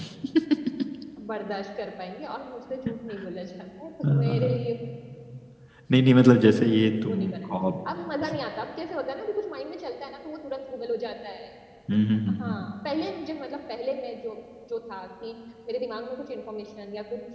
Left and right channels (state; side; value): identical; both; correlation 1.00